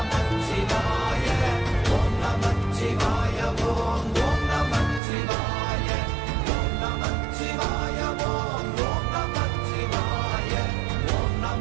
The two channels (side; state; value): left; drops out; at 5.0 s